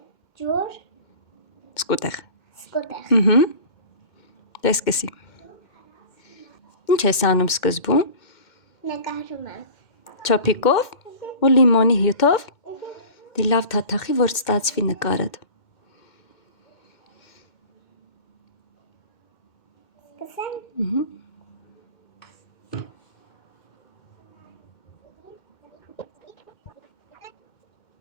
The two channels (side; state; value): right; late; 2.1 ms